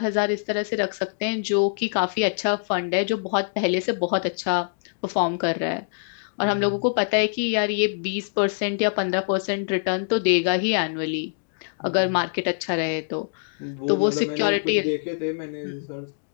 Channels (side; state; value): right; silent; digital silence